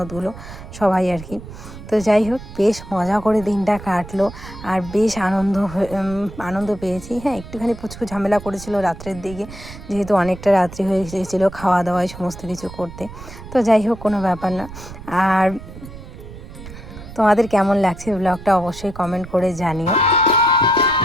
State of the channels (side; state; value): right; noise; rumble, 14 dB below the sound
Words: সবাই আর কি। তো যাই হোক বেশ মজা করে দিনটা কাটলো, আর বেশ আনন্দ পেয়েছি। হ্যাঁ একটুখানি পুচকু ঝামেলা করেছিল রাত্রের দিকে, যেহেতু অনেকটা রাত্রি হয়ে গিয়েছিলো খাওয়া দাওয়ায় সমস্ত কিছু করতে। তো যাই হোক কোনো ব্যাপার না। আর তোমাদের কেমন লাগছে ব্লগটা অবশ্যই কমেন্ট করে জানিও।